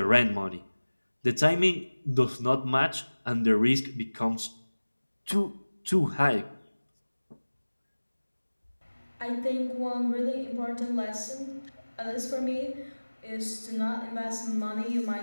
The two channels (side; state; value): both; inverted; correlation -1.00